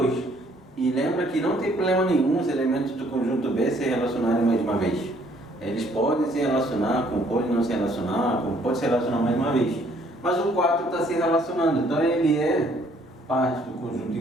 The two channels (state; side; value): normal; both; correlation 0.63